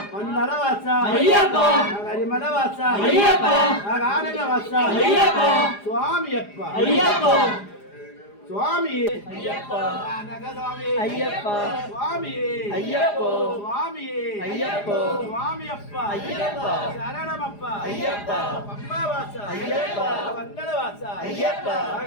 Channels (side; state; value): right; late; 4.9 ms